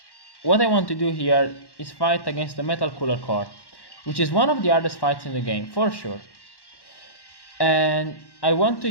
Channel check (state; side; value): late; right; 1.1 ms